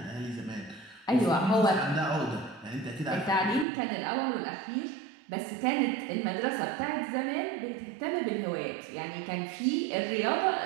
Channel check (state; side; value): drops out; left; at 3.7 s